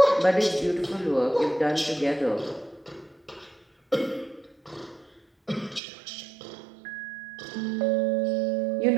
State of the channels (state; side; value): drops out; left; at 5.8 s